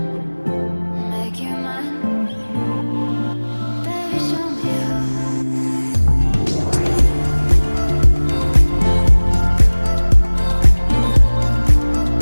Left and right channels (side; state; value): both; inverted; correlation -1.00